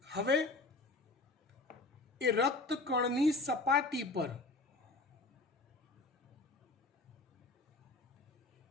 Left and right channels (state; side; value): quieter; right; 3.3 dB